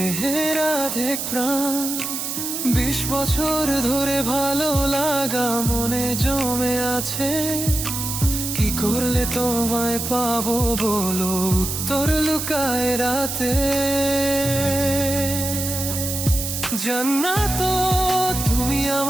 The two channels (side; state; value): right; noise; hiss, 4 dB below the sound